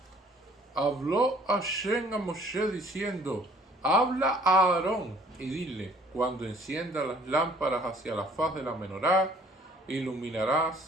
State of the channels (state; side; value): normal; both; correlation 0.57